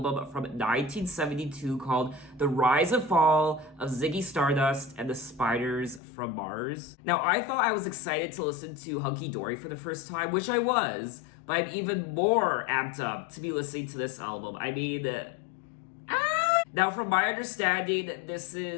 from 1972 called The Rise and Fall of Ziggy Stardust and the Spiders from Mars. Now, I thought I was excited to listen to Hunky Dory for the first time, which I was, but I'm even more amped up to be listening to this album. Now, from my understanding, this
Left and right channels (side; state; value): right; drops out; at 6.0 s